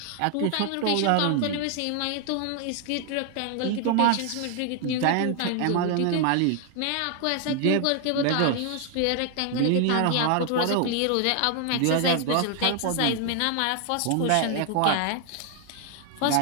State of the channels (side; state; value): both; different; correlation 0.00